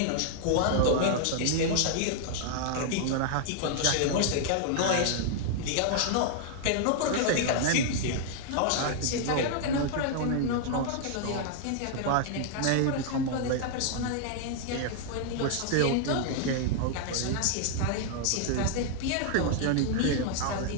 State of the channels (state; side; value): different; both; correlation -0.01